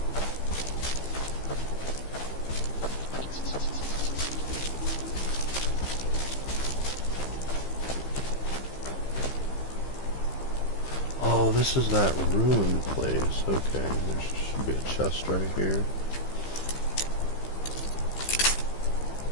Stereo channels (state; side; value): late; right; 15 ms